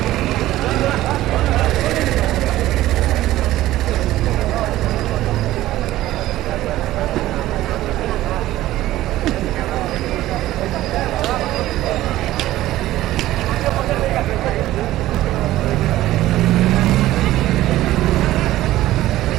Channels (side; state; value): left; quieter; 15.3 dB